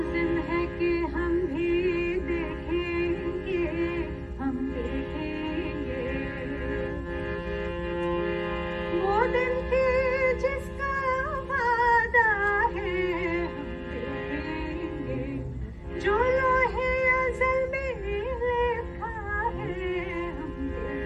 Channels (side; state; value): both; identical; correlation 1.00